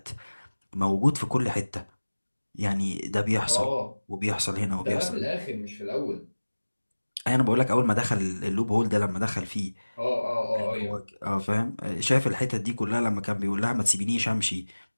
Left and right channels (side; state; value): both; inverted; correlation -1.00